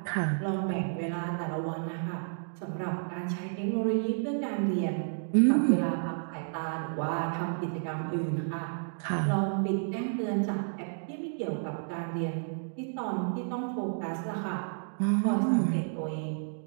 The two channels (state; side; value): silent; left; digital silence